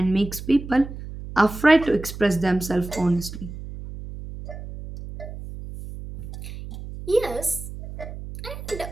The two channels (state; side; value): noise; right; hum, 11 dB below the sound